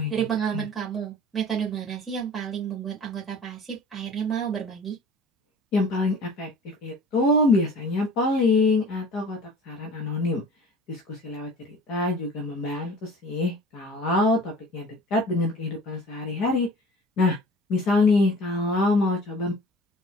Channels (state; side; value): normal; both; correlation 0.44